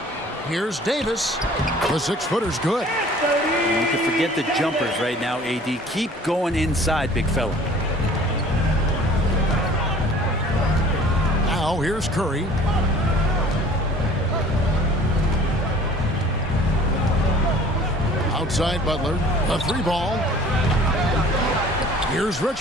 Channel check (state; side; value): normal; both; correlation 0.49